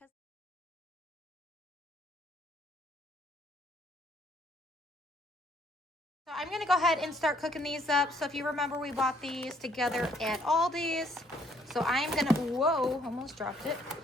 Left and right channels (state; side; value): normal; both; correlation 0.65